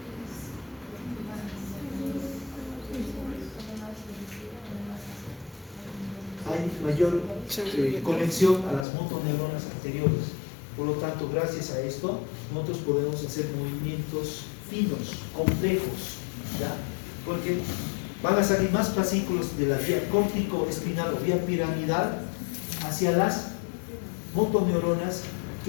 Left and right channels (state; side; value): drops out; right; at 8.8 s